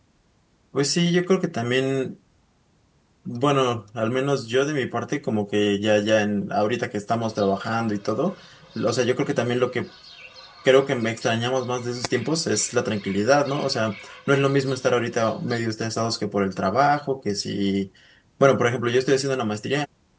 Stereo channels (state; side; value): identical; both; correlation 1.00